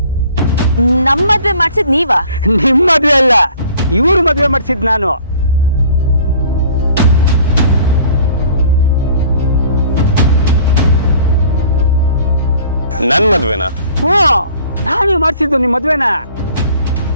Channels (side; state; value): both; inverted; correlation -0.52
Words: ನಮ್ಮ ಮದುವೆ ಮಾಡಿಸಿದ್ ನೀವಾ? ನಿಮ್ ಮದುವೆ ಅಲ್ಲ, ಇವ್ರು ಮದುವೆ ಮಾಡಿಸಿದ್ ನಾನು. ನನ್ ಮದ್ವೆನಾ? ಹ್ಞೂ, ನಾನೇ ಮಾಡಿಸಿದ್ದು ನಿಮ್ ಮದುವೆನ.